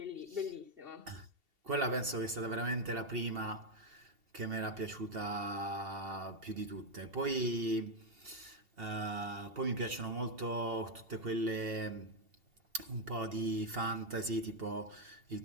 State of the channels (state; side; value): late; left; 2.7 ms